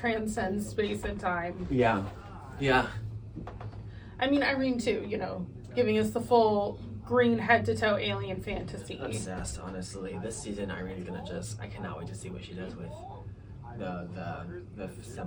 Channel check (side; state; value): both; identical; correlation 1.00